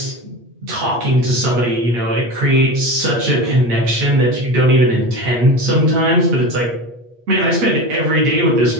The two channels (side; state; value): left; late; 8.4 ms